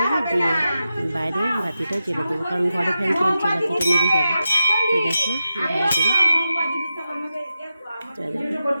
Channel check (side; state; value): both; inverted; correlation -0.90